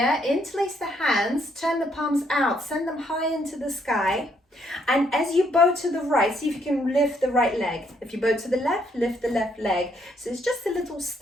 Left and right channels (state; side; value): normal; both; correlation 0.71